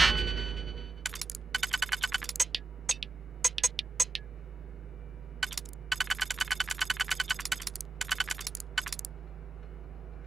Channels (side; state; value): left; quieter; 3.8 dB